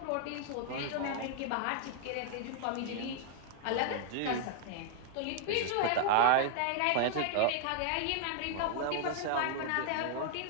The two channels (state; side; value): different; both; correlation 0.00